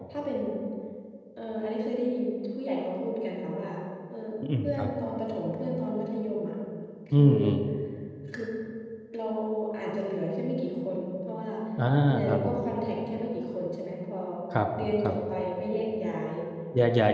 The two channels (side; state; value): both; identical; correlation 1.00